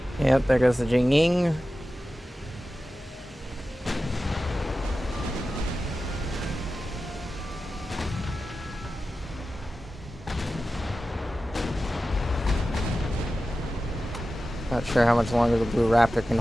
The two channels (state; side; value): normal; both; correlation 0.94